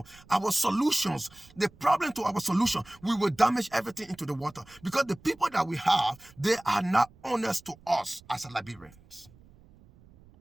our solutions, the problem to our solution, we will damage everything into the water because the people that we have, they are not honest to us as Liberians.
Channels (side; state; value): right; noise; rumble, 26 dB below the sound